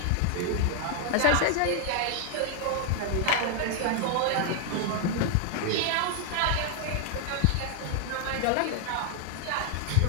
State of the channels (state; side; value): different; both; correlation 0.00